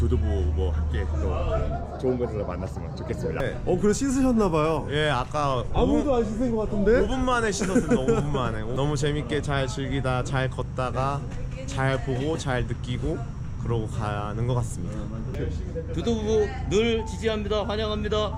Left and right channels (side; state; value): both; identical; correlation 1.00